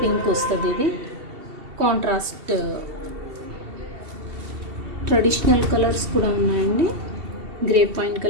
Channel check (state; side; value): late; left; 2.7 ms